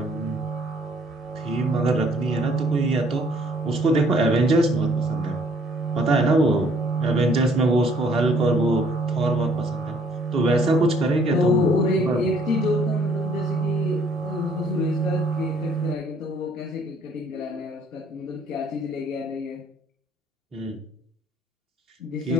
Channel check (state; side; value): normal; both; correlation 0.61